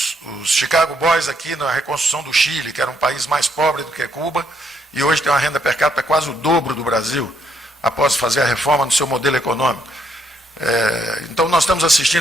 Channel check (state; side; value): normal; both; correlation 0.73